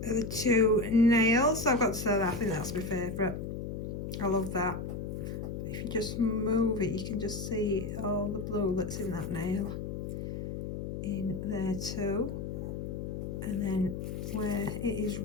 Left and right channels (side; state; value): left; noise; hum, 5 dB below the sound